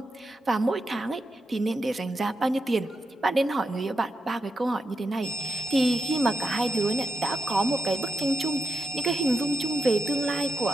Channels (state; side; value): normal; both; correlation 0.86